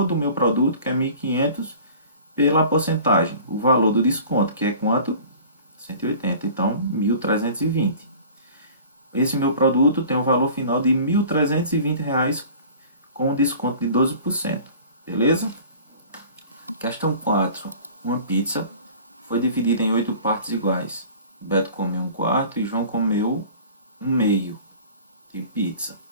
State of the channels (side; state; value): both; inverted; correlation -0.44